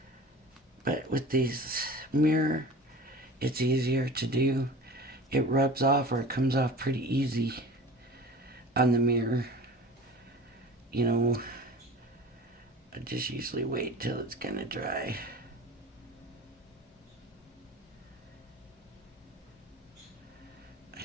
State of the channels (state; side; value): normal; both; correlation 0.38